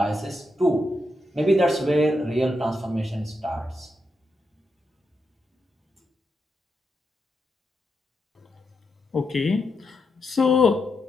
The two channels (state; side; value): normal; both; correlation 0.84